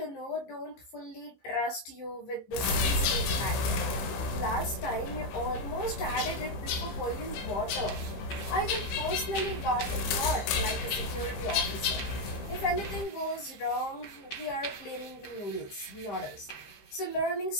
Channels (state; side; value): late; right; 15 ms